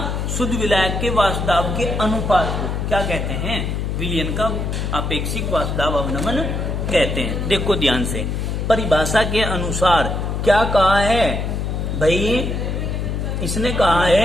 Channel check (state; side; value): noise; left; hum, 2 dB below the sound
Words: शुद्ध विलायक के वाष्पदाब के अनुपात को क्या कहते हैं, विलयन का अपेक्षिक वाष्पदाब अवनमन कहते हैं। देखो ध्यान से, परिभाषा के अनुसार क्या कहा है भाई, इसने कहा है